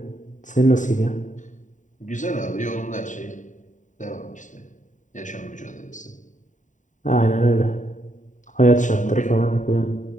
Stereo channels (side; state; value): right; late; 0.36 ms